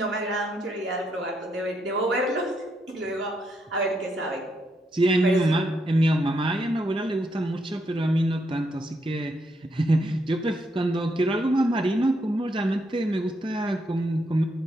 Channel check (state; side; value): normal; both; correlation 0.78